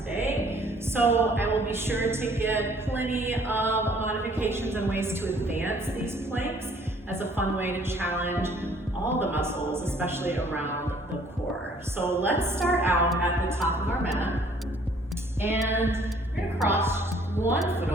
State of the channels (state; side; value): normal; both; correlation 0.59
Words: So I will be sure to get plenty of modifications and ways to advance these planks as a fun way to challenge all the muscles, especially around the core. So let's start out at the top of our mat, and you're gonna cross one foot